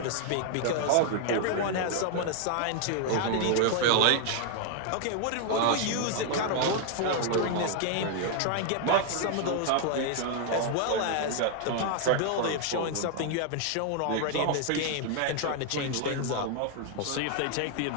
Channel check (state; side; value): different; both; correlation 0.00